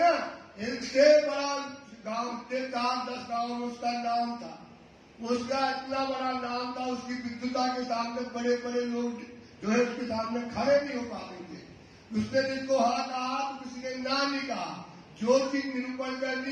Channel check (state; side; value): identical; both; correlation 1.00